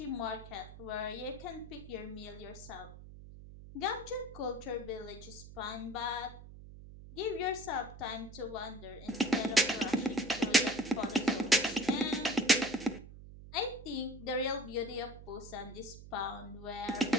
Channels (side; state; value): right; noise; hum, 15 dB below the sound